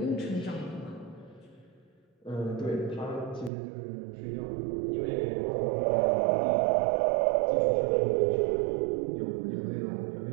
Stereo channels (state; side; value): drops out; left; at 3.5 s